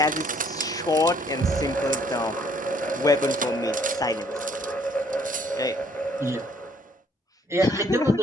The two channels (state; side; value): normal; both; correlation 0.63